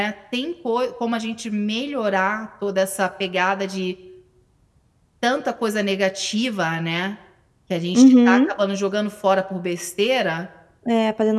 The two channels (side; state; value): both; identical; correlation 1.00